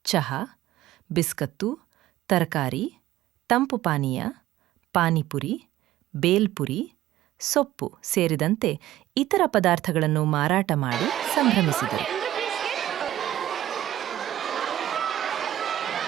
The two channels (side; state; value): left; quieter; 13.6 dB